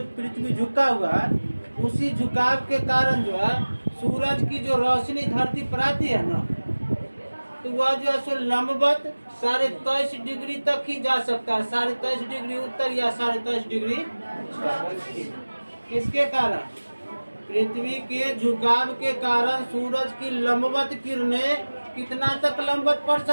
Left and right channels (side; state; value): both; inverted; correlation -1.00